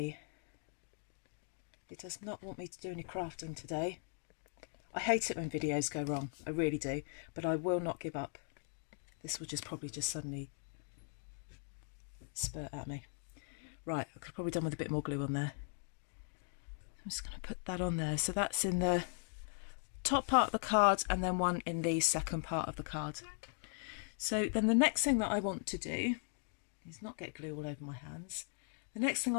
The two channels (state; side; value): silent; right; 52 dB below the other